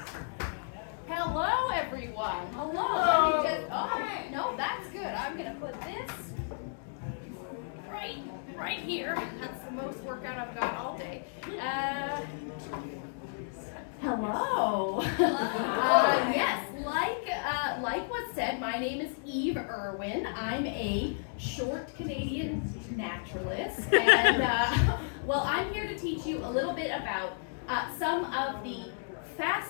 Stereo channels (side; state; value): right; silent; digital silence